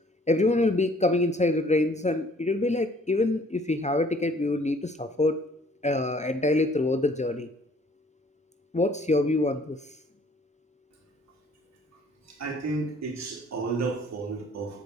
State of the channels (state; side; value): normal; both; correlation 0.58